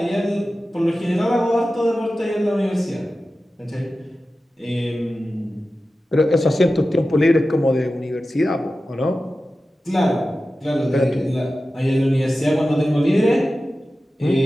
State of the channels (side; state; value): both; normal; correlation 0.94